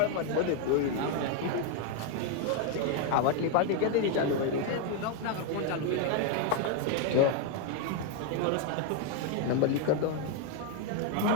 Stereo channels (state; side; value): different; both; correlation 0.01